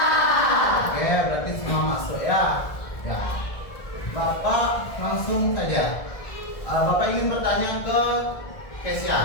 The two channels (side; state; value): right; late; 1.6 ms